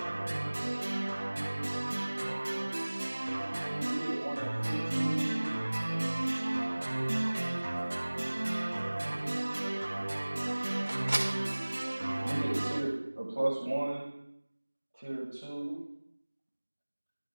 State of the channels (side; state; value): both; inverted; correlation -1.00